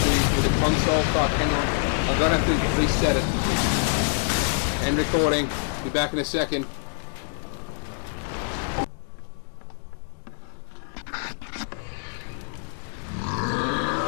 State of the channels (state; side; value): silent; right; digital silence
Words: the console. Fuck, hang on. I'm gonna have to reset it. End recording. Be back in a second.